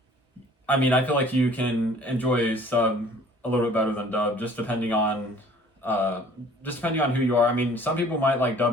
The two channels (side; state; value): both; normal; correlation 0.52